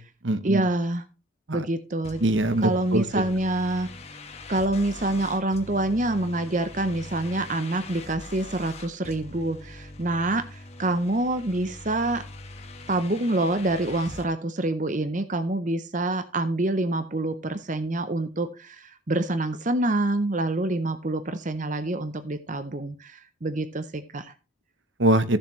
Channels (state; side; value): normal; both; correlation 0.48